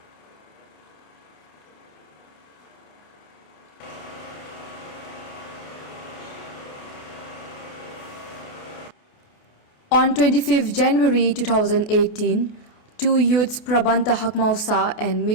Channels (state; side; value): late; right; 28 ms